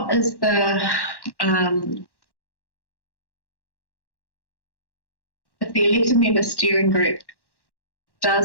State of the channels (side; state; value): right; late; 1.1 ms